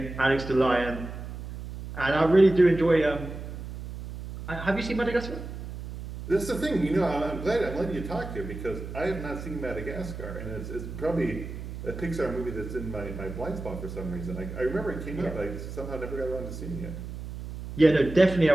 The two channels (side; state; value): right; noise; hum, 9 dB below the sound